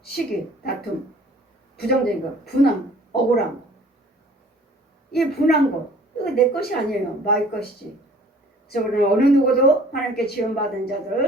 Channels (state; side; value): normal; both; correlation 0.52